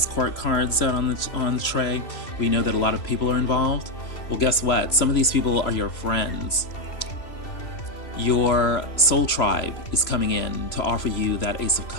court cards out on the tray, we know that a lot of people are involved. Well, guess what? Some of these people are your friends. Your soul tribe is coming in to offer you that Ace of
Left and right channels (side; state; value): right; late; 3.0 ms